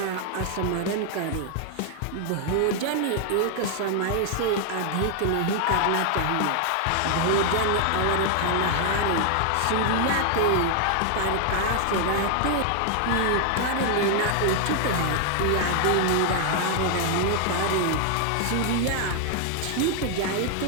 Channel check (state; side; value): different; both; correlation 0.00